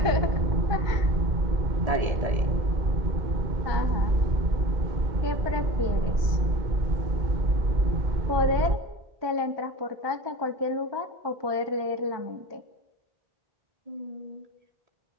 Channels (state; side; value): late; left; 1.2 ms